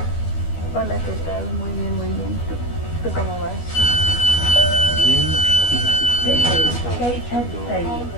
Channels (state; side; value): late; right; 12 ms